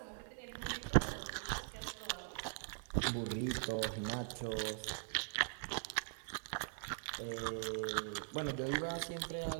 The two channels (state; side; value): silent; left; digital silence